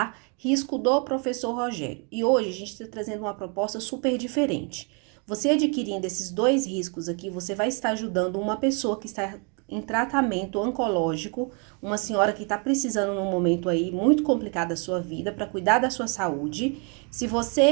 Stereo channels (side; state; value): left; quieter; 36.2 dB